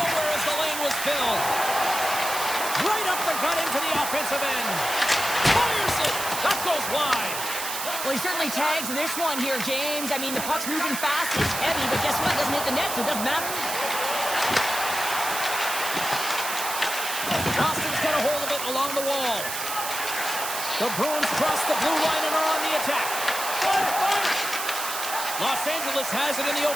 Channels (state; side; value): noise; right; hiss, 5 dB below the sound